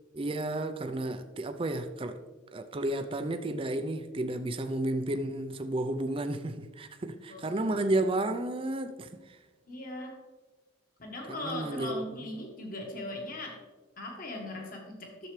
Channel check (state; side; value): normal; both; correlation 0.60